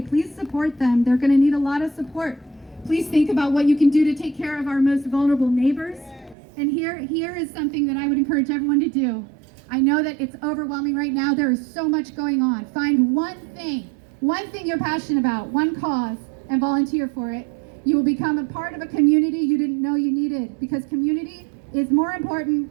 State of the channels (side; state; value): left; drops out; at 6.4 s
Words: Please support them. They're going to need a lot of support. Please think about what you can do to take care of our most vulnerable neighbors. And here is something that I would encourage everyone to do. I know that it's overwhelming right now. There is so much going on. Find one thing you're passionate about, one cause, and volunteer for it. You will become a part of a community you didn't know you needed, because community is more important